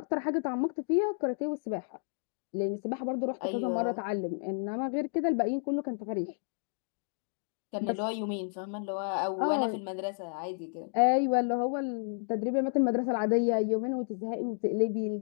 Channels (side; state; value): right; silent; digital silence